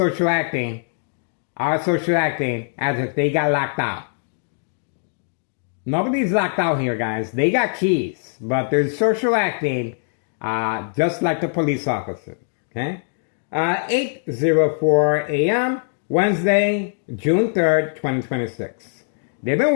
they got locked out. Nobody's locked out here, guys. They got keys, but they're social acting just like the police officer. Okay? 8:04 a.m., Wednesday, June 3rd, 2026. They've been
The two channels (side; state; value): right; silent; digital silence